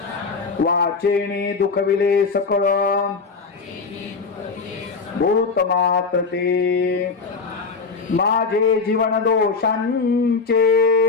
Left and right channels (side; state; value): right; quieter; 4.6 dB